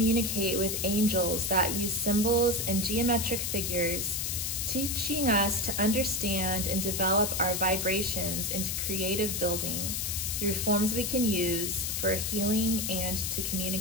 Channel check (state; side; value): noise; left; hiss, 1 dB below the sound